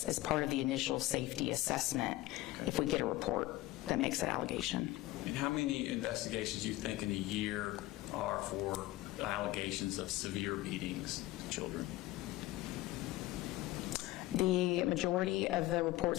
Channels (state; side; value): quieter; right; 17.5 dB